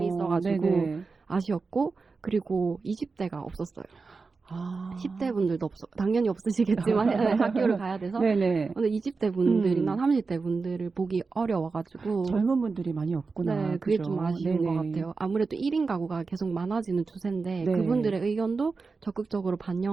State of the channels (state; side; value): quieter; left; 4.4 dB